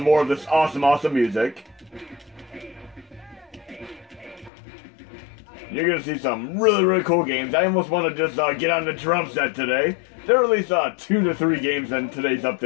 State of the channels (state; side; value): drops out; right; at 4.5 s